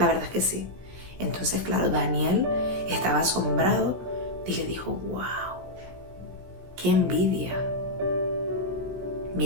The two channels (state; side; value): late; left; 16 ms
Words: verdad es que sí. Entonces, claro, Daniel estaba asombrado y le dijo, wow, qué envidia.